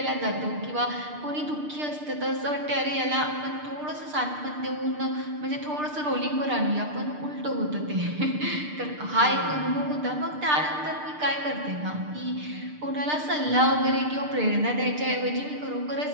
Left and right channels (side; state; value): left; late; 6.7 ms